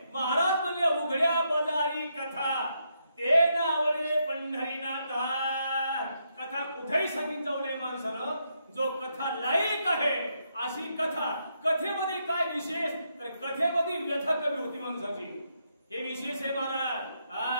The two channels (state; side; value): inverted; both; correlation -0.79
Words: महाराज म्हणले उघड्या बाजारी कथा ते नावले पंढरीनाथा. कथा कुठेही सांगितलं जाऊ नये माणसानं. जो कथा लायक आहे अशी कथा. कथेमध्ये काय विशेष? तर कथेमध्ये व्यथा कमी होती माणसाची. हे विशेष आहे महाराज.